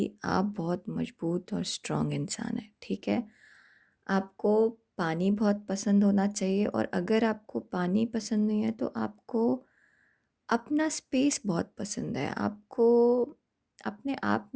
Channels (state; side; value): identical; both; correlation 1.00